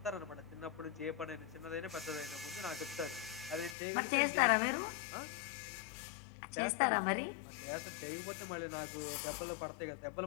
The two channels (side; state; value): right; drops out; at 3.8 s